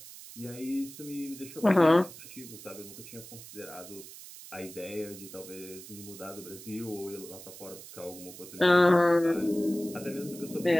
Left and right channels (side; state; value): right; noise; hiss, 15 dB below the sound